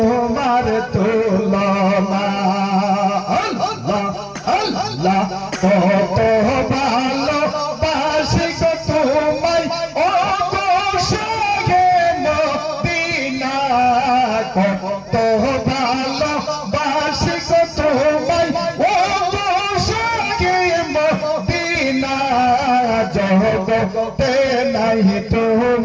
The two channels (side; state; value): both; identical; correlation 1.00